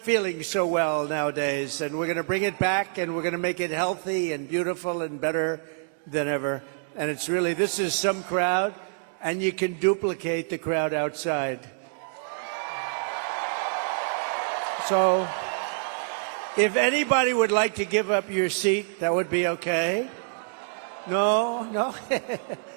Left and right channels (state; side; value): silent; left; digital silence